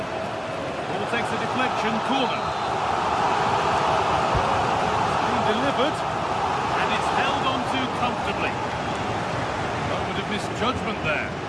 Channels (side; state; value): both; identical; correlation 1.00